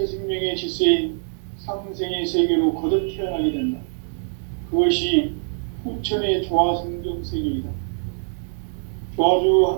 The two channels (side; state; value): left; silent; digital silence